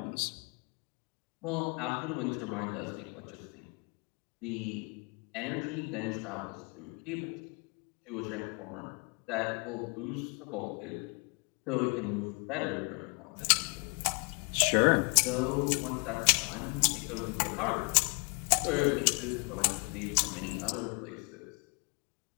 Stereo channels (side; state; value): right; quieter; 33.8 dB